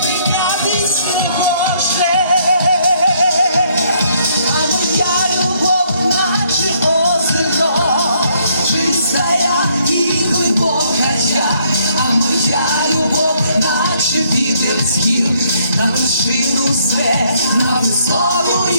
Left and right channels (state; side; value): inverted; both; correlation -0.68